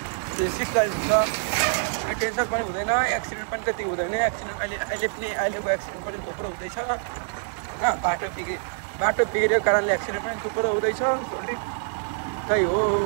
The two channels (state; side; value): silent; left; 61 dB below the other